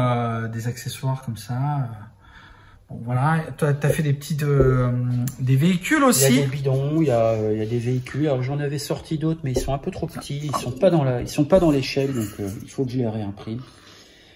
des accessoires comme ça. Bon, voilà, tu as fait des petits des véhicules aussi. Il y a des bidons, il y a des véhicules. Alors j'en avais sorti d'autres, mais ils sont un peu trop petits. Ils sont pas dans l'échelle, donc il faut que je les réimprime.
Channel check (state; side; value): identical; both; correlation 1.00